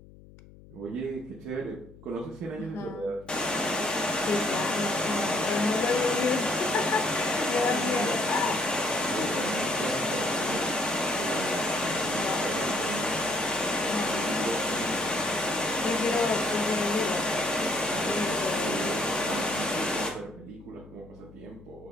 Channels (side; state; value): left; noise; hum, 21 dB below the sound